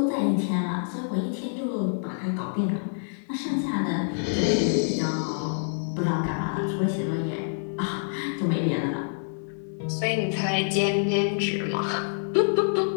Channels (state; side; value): silent; right; 60 dB below the other